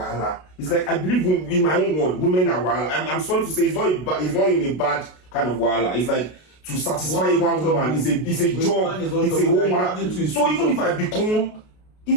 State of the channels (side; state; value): right; late; 33 ms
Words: It's like I believe in my own word, women are wahala. I'm sorry to say, it's not in a bad kind of wahala. It's like to satisfy one woman. It's a job. It's a woman. So even if I become